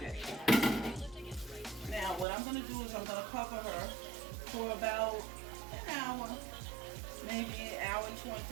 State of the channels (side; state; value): left; drops out; at 2.2 s